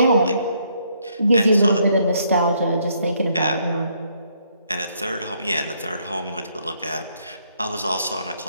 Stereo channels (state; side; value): inverted; both; correlation -0.71